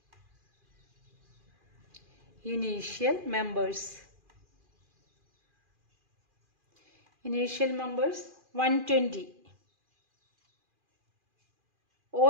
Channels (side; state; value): left; late; 2.4 ms